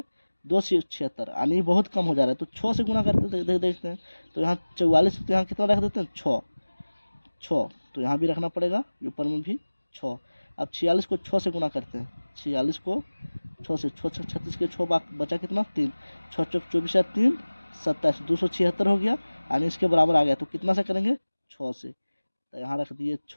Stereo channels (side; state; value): both; inverted; correlation -1.00